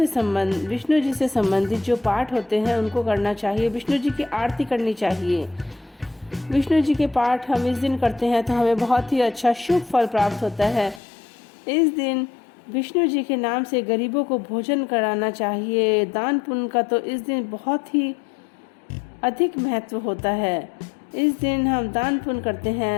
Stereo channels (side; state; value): right; drops out; at 11.0 s